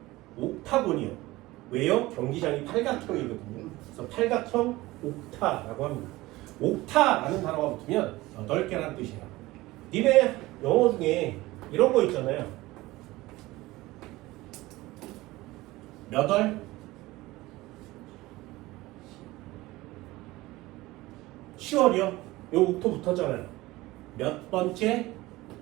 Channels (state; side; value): quieter; left; 19.1 dB